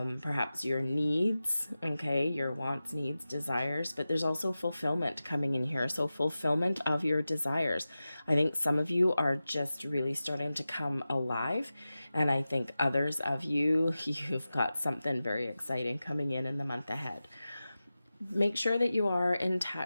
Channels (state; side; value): inverted; both; correlation -0.94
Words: your needs, okay, your wants, needs, desires, but there's also fulfillment coming in here. So fulfillment of your desires. I think some of you are just really starting to come alive, and I think others of you, you've got something very exciting coming in the month ahead. Make sure that you are in